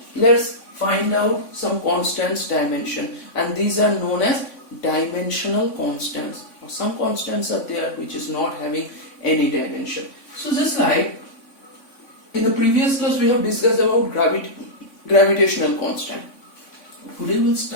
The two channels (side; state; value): right; late; 3.5 ms